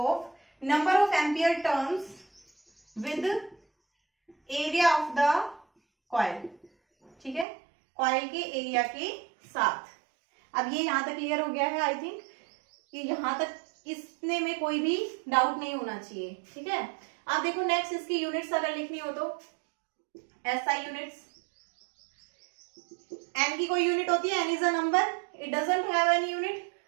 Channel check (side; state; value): left; drops out; at 7.5 s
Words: number of ampere turns with area of the coil. ठीक है, कॉइल के एरिया के साथ। अब ये यहां तक क्लियर हो गया है आई थिंक, कि यहां तक इसने में कोई भी डाउट नहीं होना चाहिए। ठीक है, आप देखो नेक्स्ट इसकी यूनिट्स अगर लिखनी हो तो एसआई यूनिट्स। एन की कोई यूनिट होती है? N is a number, it doesn't have any unit,